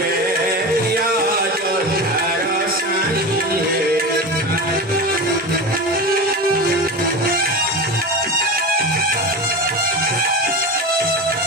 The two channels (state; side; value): normal; both; correlation 0.26